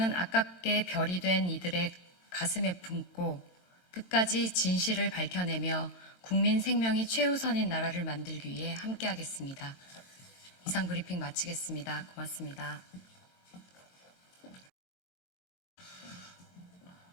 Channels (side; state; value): right; late; 22 ms